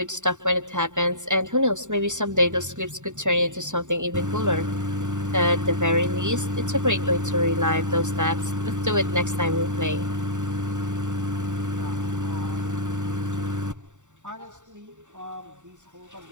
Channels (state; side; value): late; left; 0.85 ms